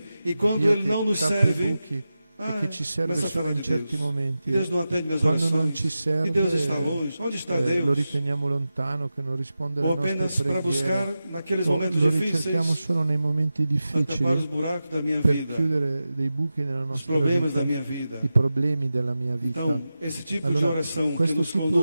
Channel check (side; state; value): both; inverted; correlation -0.93